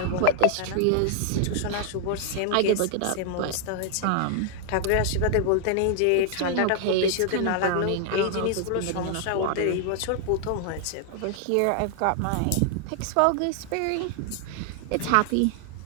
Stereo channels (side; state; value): both; different; correlation 0.00